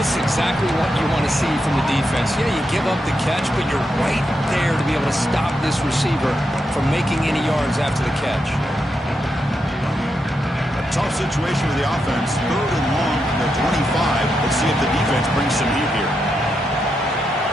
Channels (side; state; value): both; normal; correlation 0.84